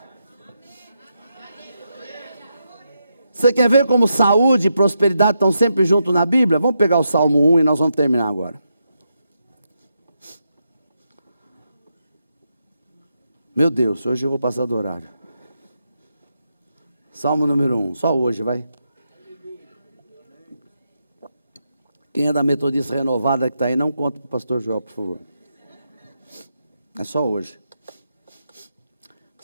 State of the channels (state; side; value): inverted; both; correlation -0.84